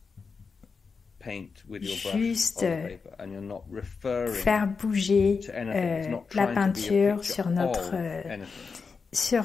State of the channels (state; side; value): quieter; right; 5.0 dB